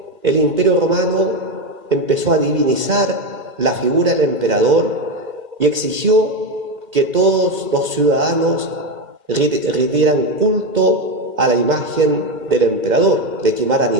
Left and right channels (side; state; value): left; late; 2.1 ms